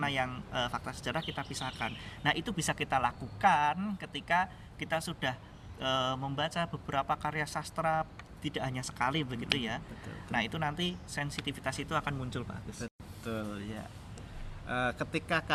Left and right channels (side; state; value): both; identical; correlation 1.00